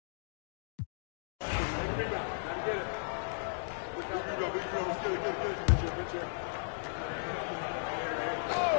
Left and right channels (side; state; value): right; silent; digital silence